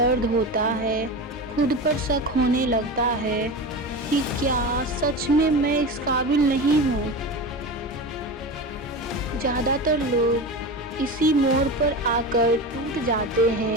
ہوتا ہے، خود پر شک ہونے لگتا ہے کہ کیا سچ میں اس قابل نہیں ہوں۔ زیادہ تر لوگ اسی موڑ پر آ کر ٹوٹ جاتے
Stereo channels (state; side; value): normal; both; correlation 0.26